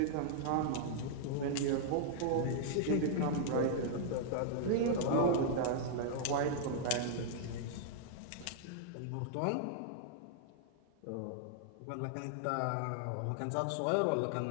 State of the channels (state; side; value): different; both; correlation -0.01